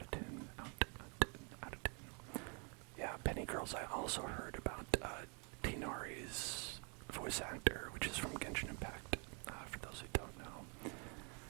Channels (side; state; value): left; quieter; 36.2 dB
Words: tin, out of tin. Yeah, Penny Girls, I also heard about, Tino Tinari's voice actor, which is from Genshin Impact, for those who don't know,